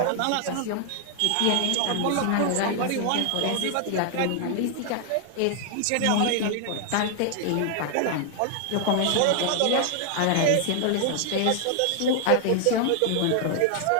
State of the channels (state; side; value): different; both; correlation 0.00